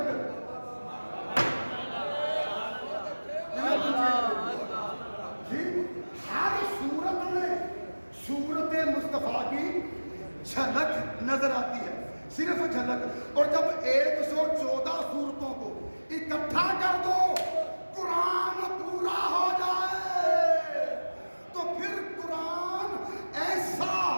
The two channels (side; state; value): both; inverted; correlation -1.00